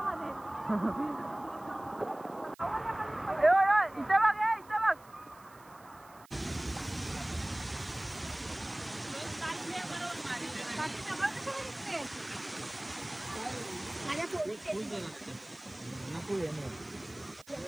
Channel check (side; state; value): right; noise; hiss, 25 dB below the sound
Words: इथे बघ, इथे बघ. माझ्या phone